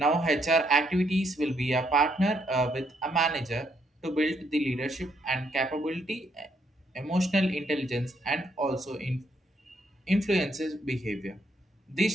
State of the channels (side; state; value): both; normal; correlation 0.73